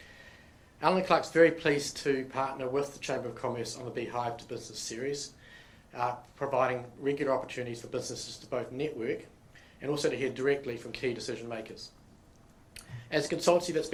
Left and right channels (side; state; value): both; identical; correlation 1.00